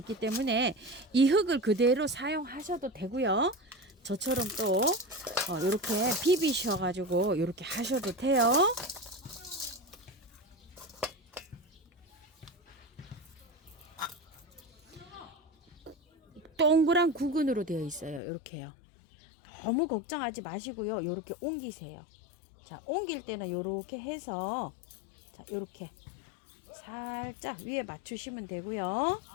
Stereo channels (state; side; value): drops out; right; at 18.2 s